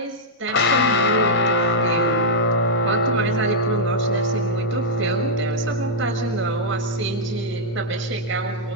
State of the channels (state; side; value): normal; both; correlation -0.05